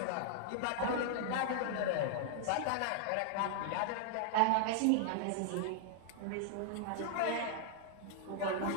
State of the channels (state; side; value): different; both; correlation -0.01